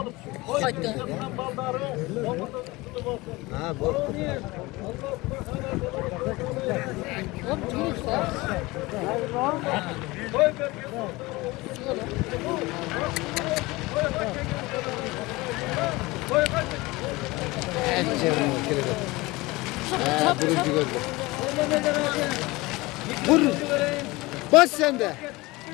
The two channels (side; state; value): right; quieter; 21.8 dB